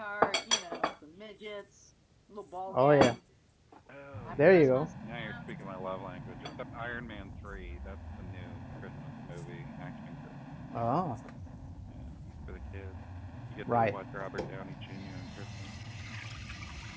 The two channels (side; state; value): both; identical; correlation 1.00